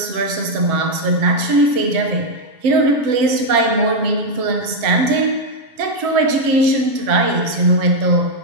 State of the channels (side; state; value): left; late; 7.1 ms